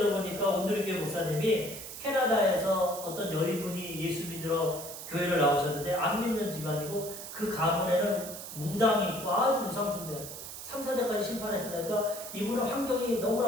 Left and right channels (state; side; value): noise; right; hiss, 10 dB below the sound